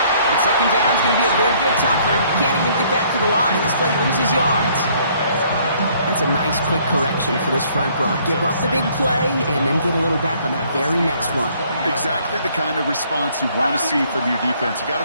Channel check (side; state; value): both; inverted; correlation -0.62